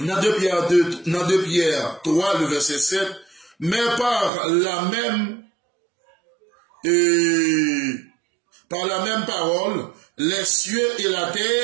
2 Pierre 3, le verset 7, mais par la même parole, les cieux et la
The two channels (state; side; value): drops out; left; at 4.3 s